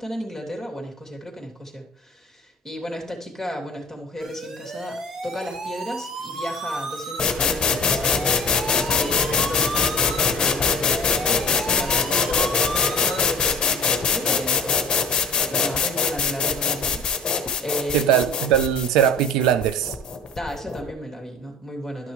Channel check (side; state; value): both; normal; correlation 0.43